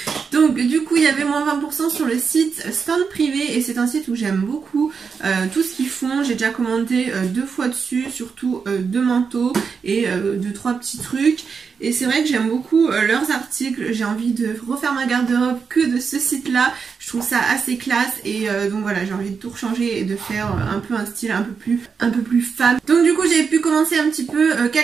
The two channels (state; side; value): quieter; left; 5.7 dB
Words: Donc du coup il y avait moins 20% sur le site Stand Privé et c'est un site où j'aime beaucoup tout ce qu'ils font. J'ai déjà commandé 2 fois dessus, surtout 2 manteaux et 2-3 petits trucs. Et c'est vrai que j'aime beaucoup leurs articles, j'ai envie de refaire ma garde-robe que de ce site-là. Je trouve ça assez classe et donc voilà, j'ai envie de tout rechanger et de faire un peu un style un peu plus femme. Donc du coup j'ai pu commencer un petit peu